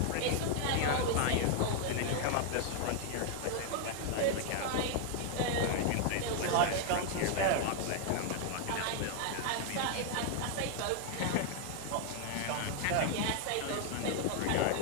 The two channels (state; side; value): different; both; correlation 0.00